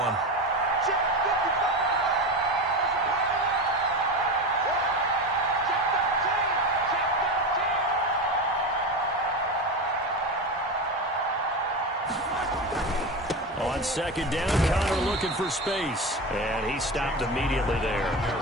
On 2nd down, Conner looking for space. And he stopped immediately there.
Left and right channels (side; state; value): both; normal; correlation 0.22